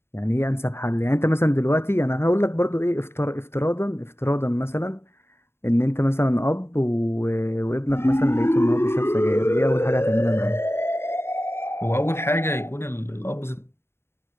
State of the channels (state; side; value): late; right; 0.12 ms